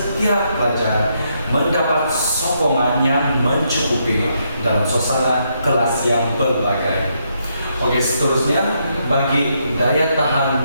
pelajar mendapat sokongan yang mencukupi dalam suasana kelas yang berbagai. Oke, seterusnya bagi daya tahan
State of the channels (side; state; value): both; inverted; correlation -0.77